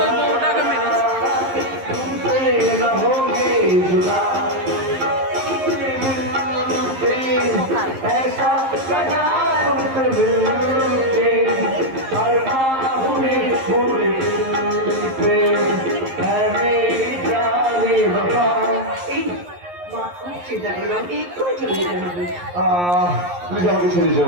বউটাকে মেরেছে। চিন্তা করলাম একটু চলে যেতে হবে প্লিজ আমাকে ছেড়ে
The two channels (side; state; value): left; late; 11 ms